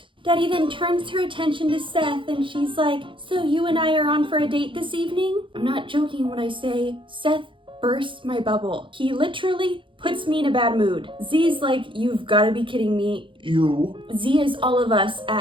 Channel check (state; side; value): late; left; 0.25 ms